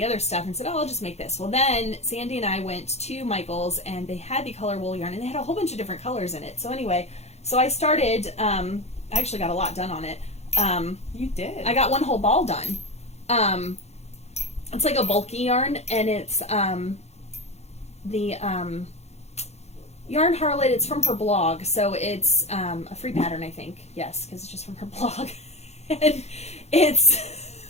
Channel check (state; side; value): late; right; 0.31 ms